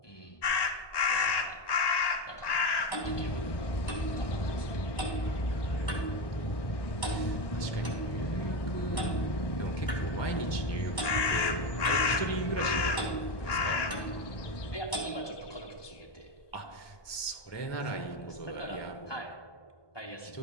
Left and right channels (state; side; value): late; right; 1.2 ms